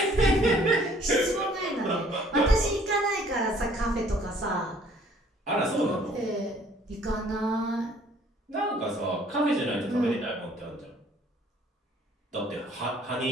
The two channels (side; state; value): both; normal; correlation 0.58